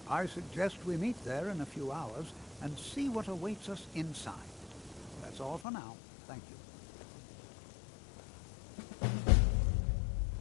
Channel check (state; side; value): drops out; right; at 5.7 s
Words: I suggest we meet there in a few hours and see what awaits us inside. That's all for now. Thank you.